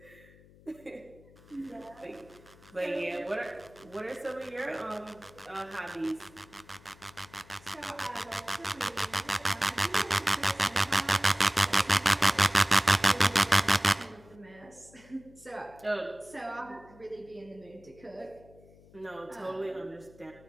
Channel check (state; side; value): noise; left; hum, 24 dB below the sound